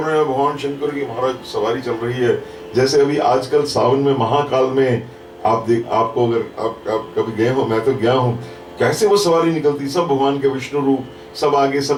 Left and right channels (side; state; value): both; identical; correlation 1.00